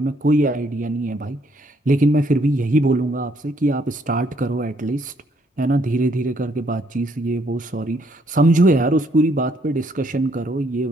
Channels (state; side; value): normal; both; correlation 0.69